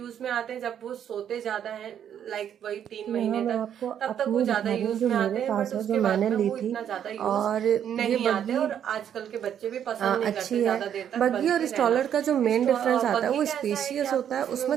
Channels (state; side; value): quieter; left; 9.3 dB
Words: में आते हैं जब वो सोते ज्यादा हैं, लाइक वही 3 महीने तक, तब तक वो ज्यादा यूज में आते हैं, बट उसके बाद में वो इतना ज्यादा यूज नहीं आते और आजकल के बच्चे भी पसंद नहीं करते ज्यादा देर तक बग्गी और स्ट्रॉलर का जो मेन डिफरेंस आता है वो स्पेशियस होता है, उसमें